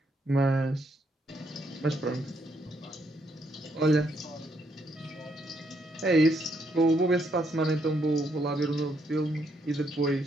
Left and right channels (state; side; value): normal; both; correlation 0.74